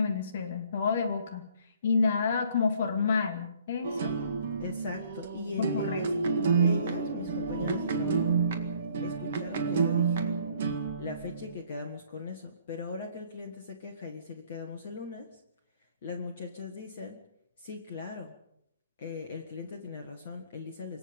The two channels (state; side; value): inverted; both; correlation -0.60